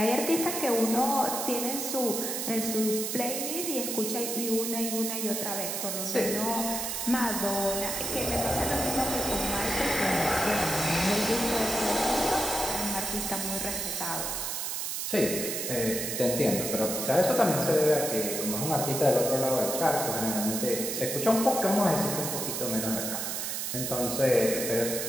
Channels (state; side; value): noise; right; hiss, 2 dB below the sound